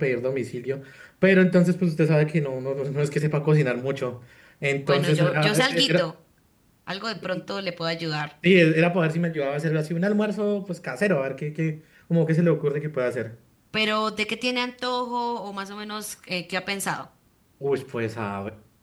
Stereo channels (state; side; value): identical; both; correlation 1.00